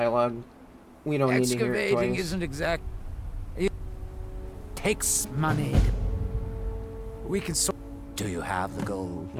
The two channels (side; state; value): both; identical; correlation 1.00